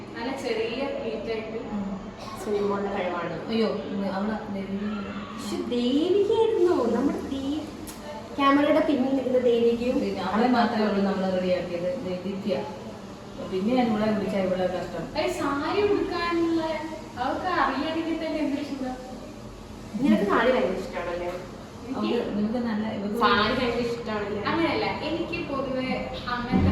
നല്ല ചെറിയ പ്ലേറ്റായിട്ട് സിനിമകളുടെ കഴിവാണ്. അയ്യോ അവിടെ പക്ഷെ ദേവികയായിരുന്നു നമ്മുടെ ക്യാമറയുടെ പിന്നിൽ നിൽക്കുന്ന ദേവികയും. അവളെ മാത്രമേ ഉള്ളൂ നമ്മൾ റെഡിയാക്കിയത്. ദേവിക്ക പിന്നെ ഞാൻ ഇവിടെ വിളിച്ചാൽ ഇവിടെ കഷ്ടം. സാരി ഉടുക്കാനുള്ള അവർക്ക് അറിയാണെങ്കിൽ തന്നെ എന്ത് ഇഷ്ടം. നിനക്ക് സാരി ഭയങ്കര ഇഷ്ടമാണല്ലേ? നിങ്ങൾക്ക് നല്ല സാരി ഭയങ്കര ഇഷ്ടമാണല്ലേ? അങ്ങനെയല്ല, എനിക്ക് പൊതുവെ അങ്ങനത്തെ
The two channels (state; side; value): identical; both; correlation 1.00